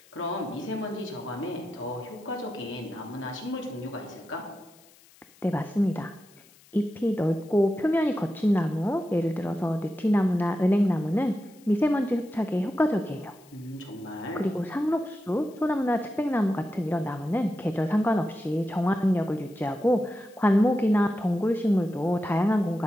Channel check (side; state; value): left; noise; hiss, 27 dB below the sound